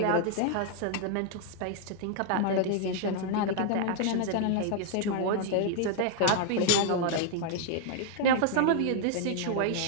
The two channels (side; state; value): both; different; correlation 0.00